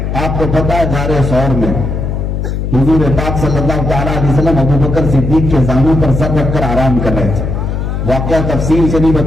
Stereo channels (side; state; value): left; noise; hum, 3 dB below the sound